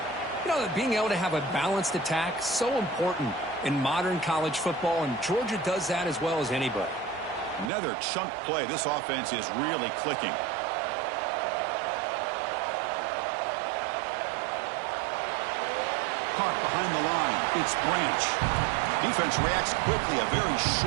you know, being able to have a balanced attack, so important in modern college football, and Georgia does that as well as anybody. Another chunk play. This offense is really clicking. Caught behind the line. It's Branch. Defense reacts quickly. A very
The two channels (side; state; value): left; drops out; at 7.7 s